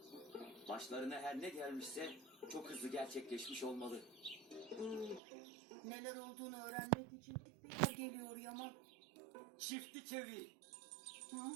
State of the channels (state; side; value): drops out; left; at 5.2 s